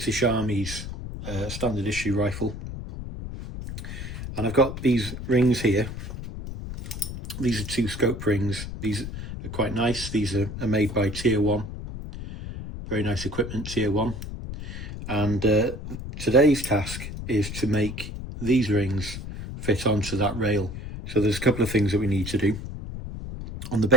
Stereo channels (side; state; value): left; noise; rumble, 8 dB below the sound